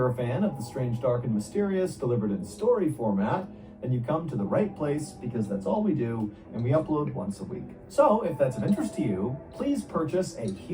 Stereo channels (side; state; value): both; identical; correlation 1.00